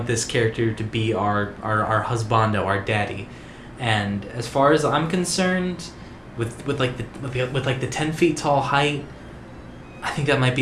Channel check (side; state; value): both; identical; correlation 1.00